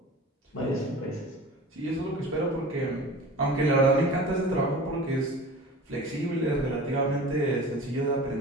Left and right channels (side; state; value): both; normal; correlation 0.38